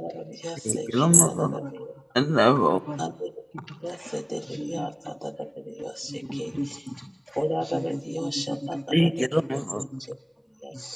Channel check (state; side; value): identical; both; correlation 1.00